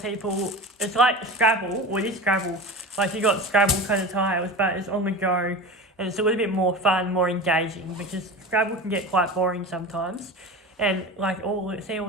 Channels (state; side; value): normal; both; correlation 0.31